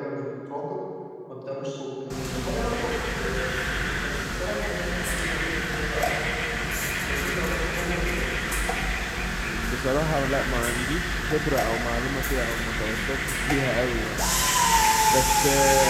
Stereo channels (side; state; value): both; identical; correlation 1.00